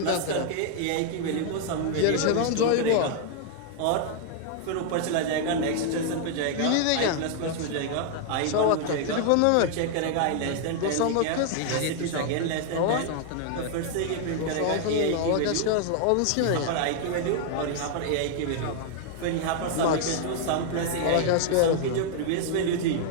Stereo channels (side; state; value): both; different; correlation 0.00